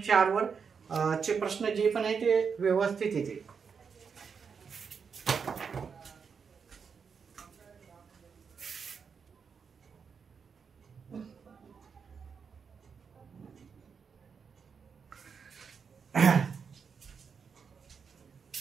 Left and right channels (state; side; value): quieter; left; 6.1 dB